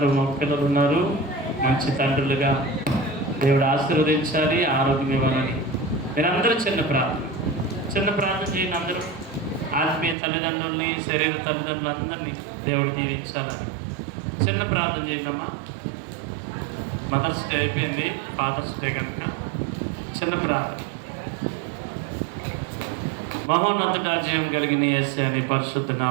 మా పిల్లలు ఉన్నారు, మంచి తండ్రులుగా దేవుడు ఆశీర్వదించాలి, ఆరోగ్యం ఇవ్వాలని మీరందరూ చిన్న ప్రార్థన చేయండి. అందరూ ఆత్మీయ తల్లిదండ్రుల్ని, శరీర తల్లిదండ్రులందరినీ దేవుడు దీవించాలని చిన్న ప్రార్థన చేయండి అమ్మా. మదర్స్ డే అయిపోయింది, ఫాదర్స్ డే కనుక చిన్న ప్రార్థన. మహోన్నత జయం కలిగిన యేసయ్య నీ పరిశుద్ధ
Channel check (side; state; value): left; drops out; at 10.2 s